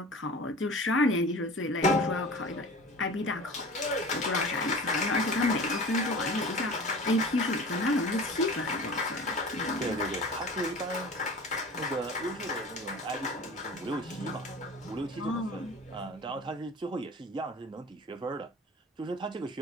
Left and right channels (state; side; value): normal; both; correlation 0.38